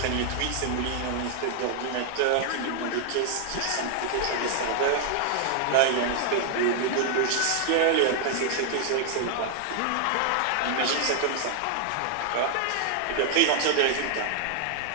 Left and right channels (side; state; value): both; different; correlation 0.00